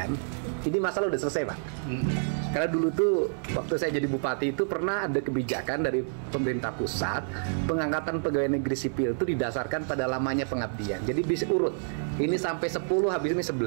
ini masalah udah selesai Pak. Karena dulu tuh waktu saya jadi bupati itu pernah ada kebijakan dari pemerintah pusat, pengangkatan pegawai negeri sipil itu didasarkan pada lamanya pengabdian. Jadi bisa urut, ini sampai 10, habis ini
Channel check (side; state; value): left; silent; 59 dB below the other